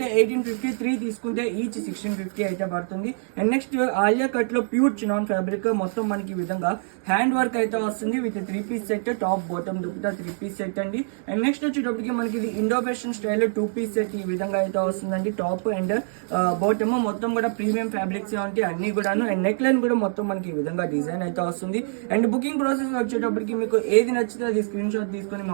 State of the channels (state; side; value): silent; left; digital silence